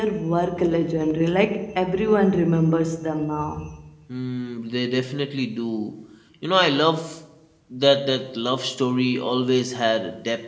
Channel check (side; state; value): both; identical; correlation 1.00